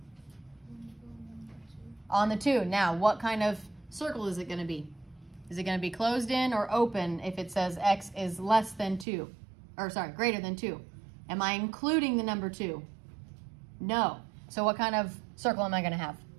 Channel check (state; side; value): drops out; left; at 9.1 s